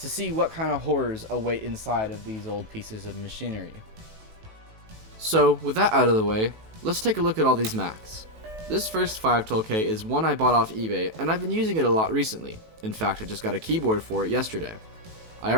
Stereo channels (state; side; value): late; left; 18 ms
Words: see what kind of horrors await inside of these old pieces of machinery. So, with that out of the way, let's take a look at all these Macs. This first 512K is one I bought off eBay, and I've been using it a lot recently. In fact, I just got a keyboard for it yesterday. I